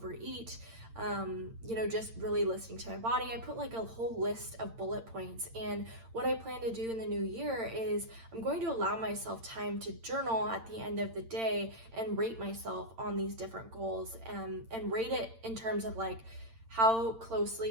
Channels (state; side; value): late; left; 8.8 ms